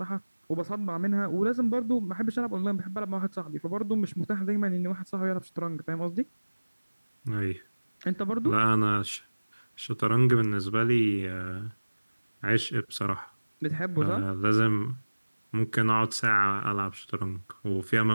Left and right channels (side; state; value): both; inverted; correlation -1.00